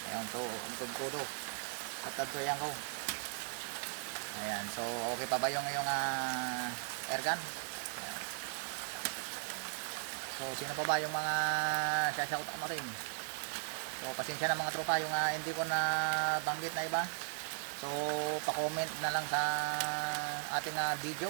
ayan, so ang todo at tadtoyan ko, ayan, so okay pa ba yung airgun? So sino pa ba yung mga shoutout natin? So pasensya na mga tropa yung hindi ko na banggit na iba. So pa-comment na lang sa ating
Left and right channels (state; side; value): silent; left; digital silence